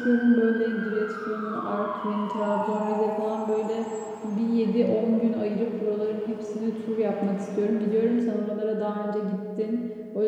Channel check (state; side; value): identical; both; correlation 1.00